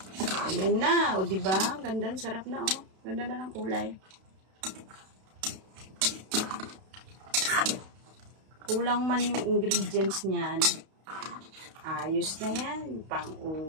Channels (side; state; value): left; late; 32 ms